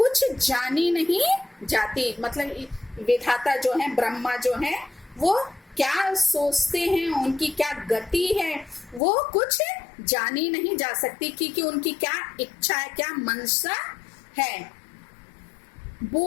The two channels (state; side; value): drops out; right; at 9.0 s